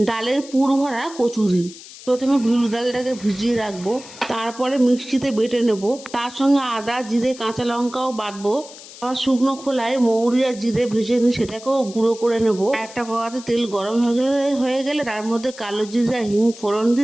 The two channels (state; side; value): noise; left; hiss, 17 dB below the sound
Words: ডালের পুর ভরা কচুরি। প্রথমে বিউলি ডালটাকে ভিজিয়ে রাখবো, তারপরে মিক্সিতে বেটে নেব। তার সঙ্গে আদা, জিরে, কাঁচা লঙ্কাও বাটবো। আবার শুকনো খোলায় মৌরি আর জিরে ভেজে নিয়ে সেটাকেও গুঁড়ো করে নেব। একটা কড়াতে তেল গরম হয়ে গেলে তার মধ্যে কালো জিরে আর হিং ফোড়ন